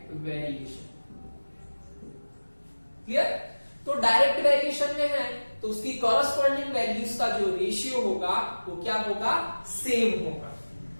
Clear? तो डायरेक्ट वेरिएशन में है तो उसकी कॉरस्पॉन्डिंग वैल्यूज का जो रेशियो होगा वो क्या होगा? सेम होगा।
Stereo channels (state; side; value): inverted; both; correlation -1.00